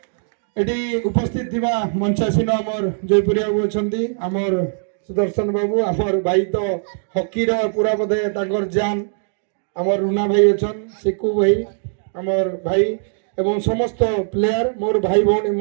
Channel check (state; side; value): silent; left; digital silence